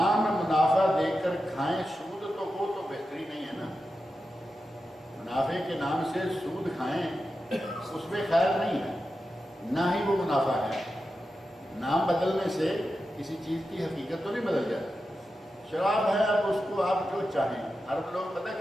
منافع دے کر کھائیں سود تو وہ تو بہتری نہیں ہے نا، منافع کے نام سے سود کھائیں اس میں خیر نہیں ہے، نہ ہی وہ منافع ہے۔ نام بدلنے سے کسی چیز کی حقیقت تو نہیں بدل جاتی۔ شراب ہے، اب اس کو آپ جو چاہیں، عرب لوگ پتہ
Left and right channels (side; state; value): both; normal; correlation 0.90